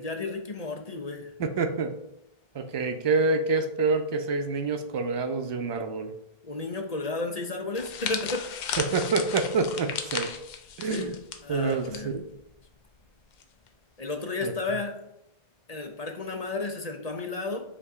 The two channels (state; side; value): late; right; 2.1 ms